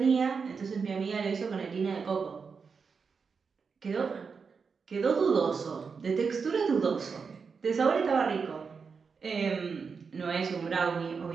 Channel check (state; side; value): quieter; left; 5.4 dB